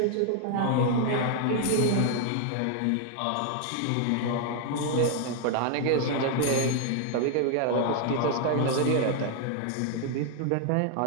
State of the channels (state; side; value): different; both; correlation 0.00